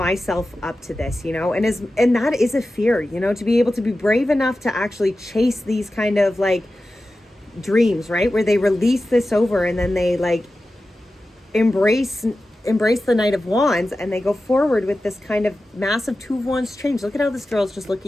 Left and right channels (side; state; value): both; normal; correlation 0.94